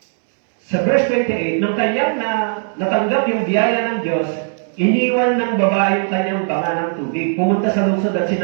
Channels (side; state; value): left; silent; 65 dB below the other